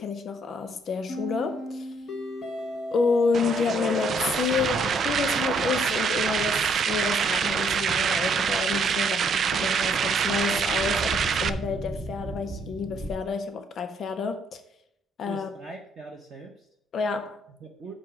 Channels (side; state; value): both; normal; correlation 0.68